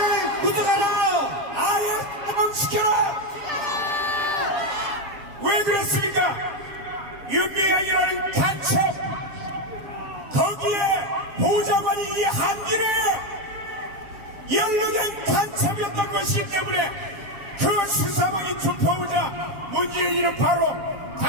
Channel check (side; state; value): left; late; 7.5 ms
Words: 구속하라! 아예 시켜라! 왜 그랬습니까? 윤미향이라는 간첩 거기에 보좌관이 이 한길에 연루된 간첩이었던 것이기 때문에 그 수사망이 좁혀오자 문재인이는 바로